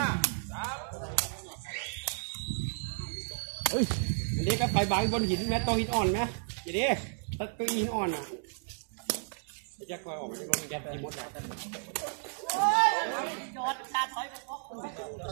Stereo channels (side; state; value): left; silent; 56 dB below the other